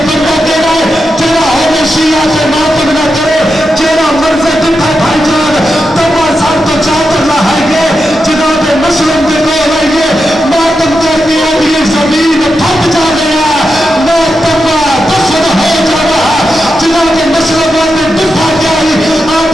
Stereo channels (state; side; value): normal; both; correlation 0.88